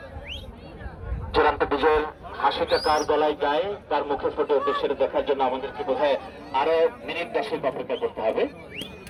চূড়ান্ত বিজয়ের হাসিটা কার গলায় গায়ে, কার মুখে ফুটে ওঠে সেটা দেখার জন্য আমাদেরকে বোধহয় আরো মিনিট 10 অপেক্ষা করতে হবে।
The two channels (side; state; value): both; identical; correlation 1.00